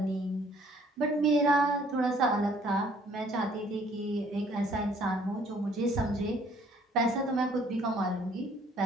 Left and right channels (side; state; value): both; normal; correlation 0.60